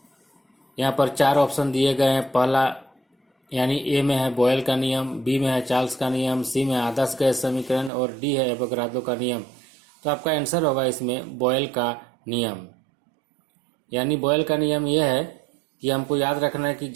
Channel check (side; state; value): left; drops out; at 7.9 s